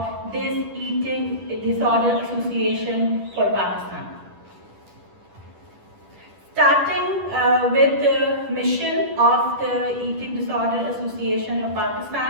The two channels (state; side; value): late; left; 10 ms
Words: this Eating Disorder Association for Pakistan. Starting with the mission of the Eating Disorder Association of